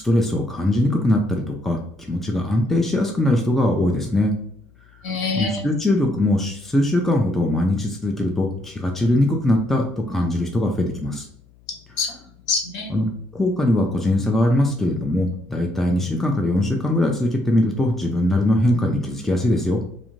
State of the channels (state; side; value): noise; left; hum, 29 dB below the sound